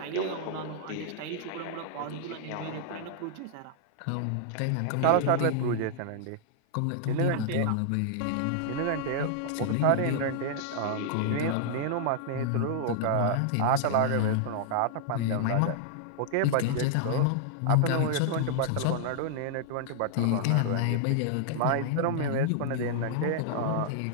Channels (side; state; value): both; different; correlation -0.01